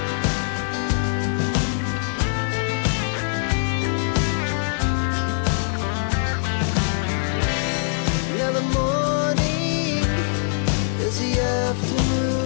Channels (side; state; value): right; silent; 64 dB below the other